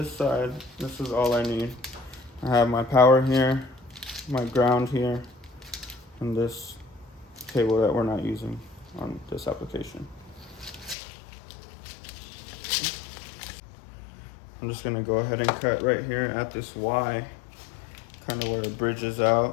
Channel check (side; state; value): right; drops out; at 11.0 s